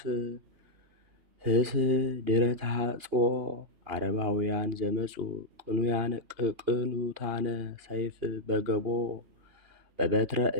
ፍስሕ ድኅረ ተሐጽኦ አረባውያን ዘመፁ ቅኑታነ ሰይፍ በገቦ በበትረ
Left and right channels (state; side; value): late; left; 2.9 ms